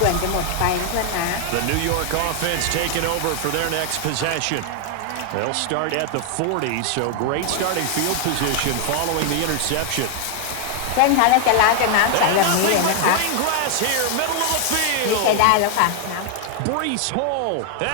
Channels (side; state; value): both; different; correlation 0.00